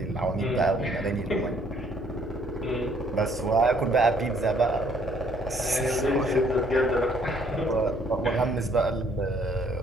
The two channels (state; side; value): normal; both; correlation 0.64